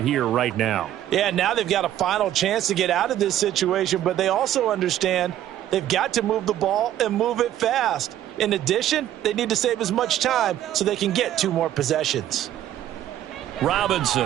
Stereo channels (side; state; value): left; quieter; 12.2 dB